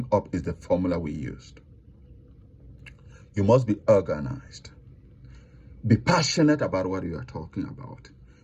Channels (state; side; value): identical; both; correlation 1.00